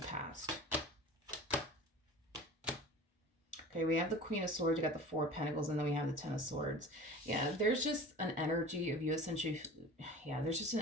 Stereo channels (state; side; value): normal; both; correlation 0.39